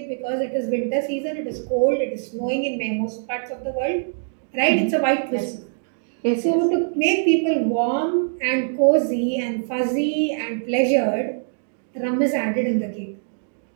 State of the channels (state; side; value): silent; left; digital silence